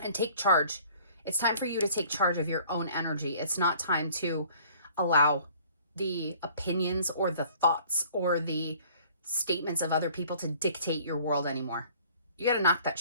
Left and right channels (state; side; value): inverted; both; correlation -0.53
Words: and take charge. It's time for you to take charge of your own energy. It's not time to allow the opinions or the thoughts or the statements of other people to dictate your world anymore. You got to knock that